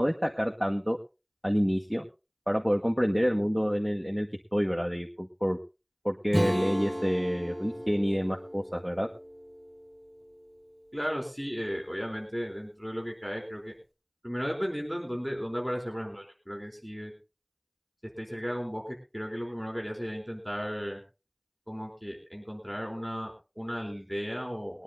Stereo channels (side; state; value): both; identical; correlation 1.00